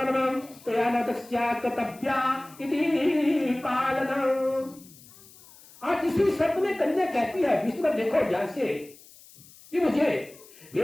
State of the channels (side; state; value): left; noise; hiss, 23 dB below the sound